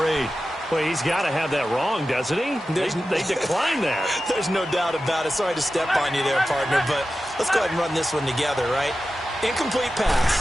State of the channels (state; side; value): normal; both; correlation 0.93